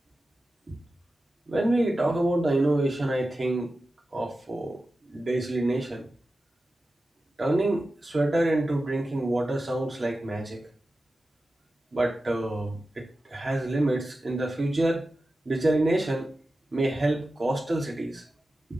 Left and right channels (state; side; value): normal; both; correlation 0.93